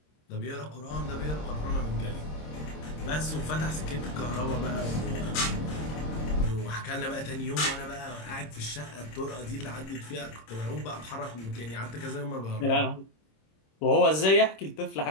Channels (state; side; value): late; right; 26 ms